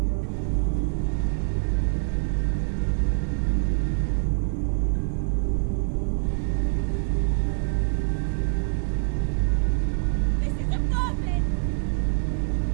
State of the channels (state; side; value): silent; left; 61 dB below the other